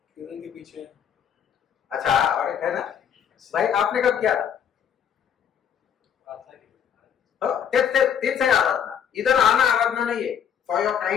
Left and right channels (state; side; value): quieter; right; 8.5 dB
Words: किरण के पीछे. अच्छा और है ना भाई, आपने कब किया था? तेच है आराधना. इधर आना आराधना नहीं है. फॉर योर